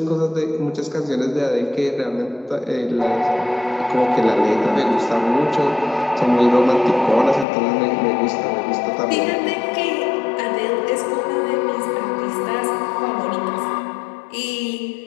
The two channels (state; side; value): drops out; right; at 7.5 s